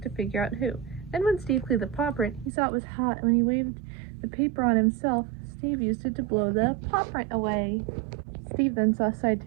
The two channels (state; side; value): drops out; left; at 2.5 s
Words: to figure out who. Then when Steve cleaned the paw print, he saw it was hot, and when he waved the paper on himself, Steve used it to blow the paw print away. Steve then saw Side